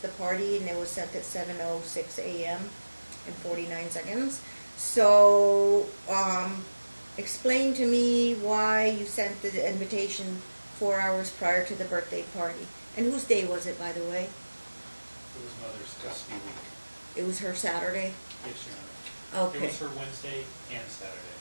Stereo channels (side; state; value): both; inverted; correlation -1.00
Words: party, and it was sent at 7:06 a.m. and 49 seconds. So, explain to me why you sent the invitation 4 hours prior to the birthday party. And whose day was it, by the way? It was Mother's Custody Week. It was her Saturday? Yes, Your Honor. Okay. It was her Wednesday and Saturday.